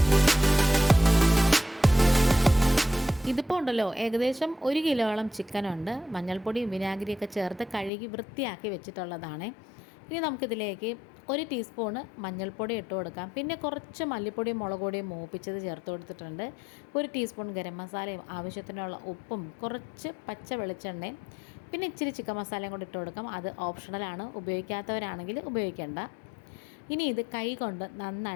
ഇതിപ്പോൾ ഉണ്ടല്ലോ, ഏകദേശം 1 കിലോളം ചിക്കനുണ്ട്. മഞ്ഞൾപ്പൊടിയും വിനാഗിരിയൊക്കെ ചേർത്ത് കഴുകി വൃത്തിയാക്കി വെച്ചിട്ടുള്ളതാണ്. ഇനി നമുക്കിതിലേക്ക് 1 ടീസ്പൂണ് മഞ്ഞൾപ്പൊടി ഇട്ട് കൊടുക്കാം. പിന്നെ കുറച്ച് മല്ലിപ്പൊടിയും മുളക് പൊടിയും മൂപ്പിച്ചത് ചേർത്ത് കൊടുത്തിട്ടുണ്ട്. 1 ടീസ്പൂൺ ഗരം മസാലയും ആവശ്യത്തിനുള്ള ഉപ്പും കുറച്ച് പച്ച വെളിച്ചെണ്ണയും പിന്നെ ഇച്ചിരി ചിക്കൻ മസാലയും കൂടി ഇട്ട് കൊടുക്കാം. അത് ഓപ്ഷണലാണ്, ഉപയോഗിക്കാത്തവരാണെങ്കിൽ ഉപയോഗിക്കേണ്ട. ഇനി ഇത് കൈ കൊണ്ട്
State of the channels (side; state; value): right; drops out; at 7.9 s